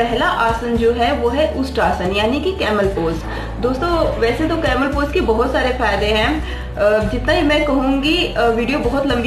आसन जो है वो है उष्ट्रासन यानी कि कैमल पोज। दोस्तों, वैसे तो कैमल पोज के बहुत सारे फायदे हैं, जितना ही मैं कहूँगी वीडियो बहुत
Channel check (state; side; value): identical; both; correlation 1.00